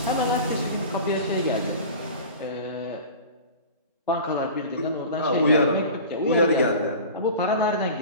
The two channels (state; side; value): inverted; both; correlation -0.36